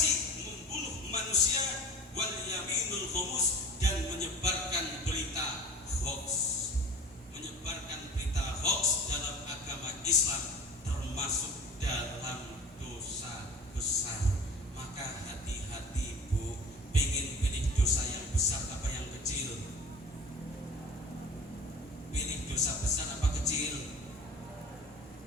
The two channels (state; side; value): normal; both; correlation 0.40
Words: membunuh manusia, wal yaminul khumus, dan menyebarkan berita hoax. Menyebarkan berita hoax dalam agama Islam termasuk dalam dosa besar. Maka hati-hati bu, pengen pilih dosa yang besar apa yang kecil? Pilih dosa besar apa kecil?